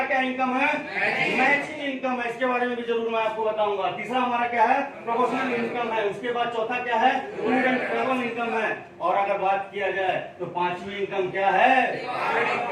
क्या इनकम है? मैचिंग इनकम है। इसके बारे में भी जरूर मैं आपको बताऊंगा। तीसरा हमारा क्या है? प्रोपोर्शनल इनकम है। उसके बाद चौथा क्या है? टूर एंड ट्रैवल इनकम है। और अगर बात किया जाए तो 5वीं इनकम क्या है?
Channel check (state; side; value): identical; both; correlation 1.00